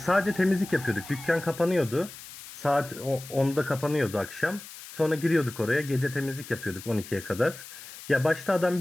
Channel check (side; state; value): left; noise; hiss, 15 dB below the sound